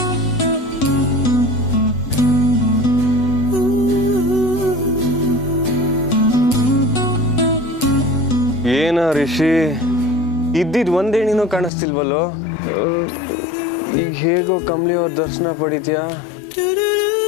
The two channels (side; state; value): right; drops out; at 11.7 s